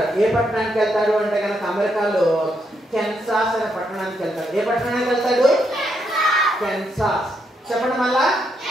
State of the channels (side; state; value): both; normal; correlation 0.78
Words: ఏ పట్టణానికి వెళ్తాడు అంటే కనుక అమెరికాలో కెన్సాస్ అనే పట్టణానికి వెళ్తాడు. ఏ పట్టణానికి వెళ్తాడు? కెన్సాస్. చెప్పండి మళ్ళా,